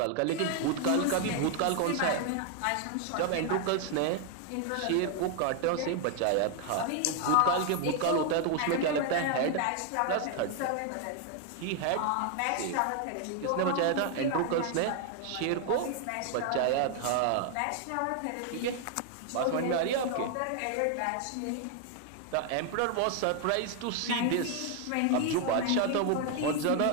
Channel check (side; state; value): both; different; correlation 0.00